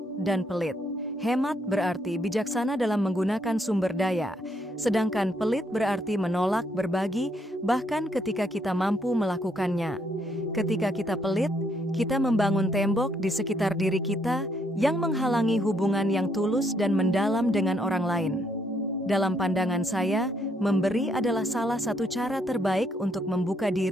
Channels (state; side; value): normal; both; correlation 0.72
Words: dan pelit. Hemat berarti bijaksana dalam menggunakan sumber daya, sedangkan pelit berarti menolak berbagi bahkan ketika kita mampu melakukannya. Ketika kita pelit, kita membangun tembok di sekitar diri kita yang menghalangi hubungan yang tulus dan mendalam dengan orang lain. Dalam pandangan saya, memberi adalah salah satu cara terbaik untuk membuka